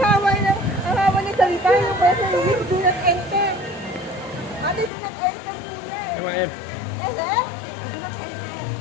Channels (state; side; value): drops out; right; at 4.9 s